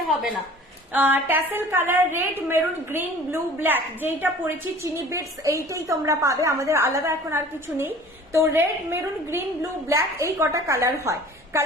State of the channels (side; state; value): both; normal; correlation 0.46